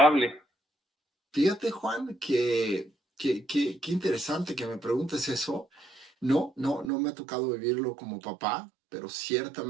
fíjate, Juan, qué interesante que me preguntes eso. No me ha tocado vivirlo como papá, pero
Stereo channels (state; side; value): drops out; left; at 6.9 s